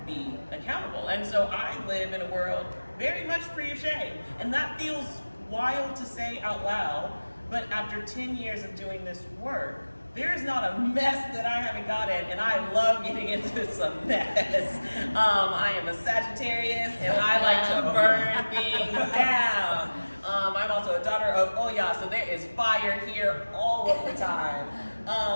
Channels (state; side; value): inverted; both; correlation -1.00